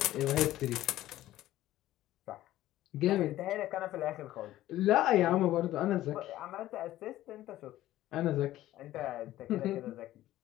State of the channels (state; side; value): quieter; right; 14.6 dB